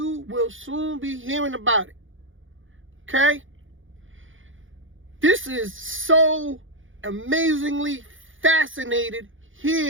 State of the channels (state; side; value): late; left; 0.57 ms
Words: will soon be hearing about it. Okay? This is so amazingly fascinated